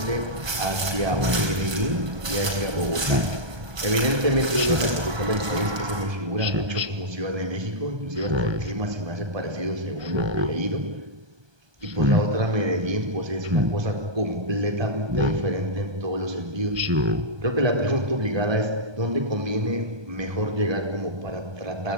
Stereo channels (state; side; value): late; left; 1.2 ms